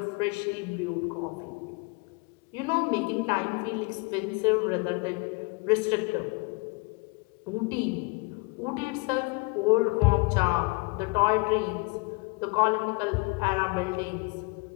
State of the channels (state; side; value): quieter; right; 28.6 dB